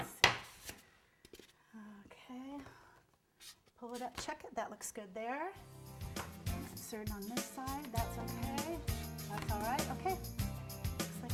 see. Okay. Pull it up, check it, that looks good there. Insert it on this side, that's okay. That's all right, okay. Looks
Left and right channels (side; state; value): both; identical; correlation 1.00